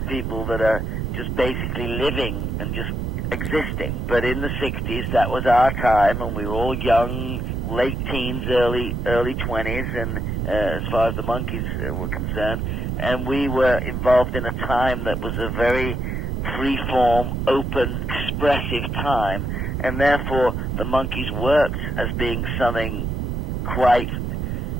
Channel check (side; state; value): right; noise; rumble, 2 dB below the sound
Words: people that are just basically living and just existing. But in the 60s, that was our time, and we were all young, late teens, early 20s, and as far as the Monkees were concerned. And we were involved in a time that was a very free-form, open, expressive time, and therefore the Monkees worked as being something quite